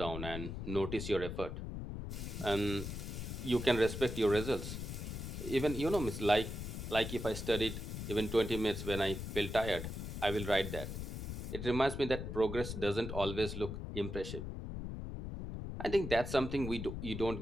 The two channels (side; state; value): left; noise; rumble, 6 dB below the sound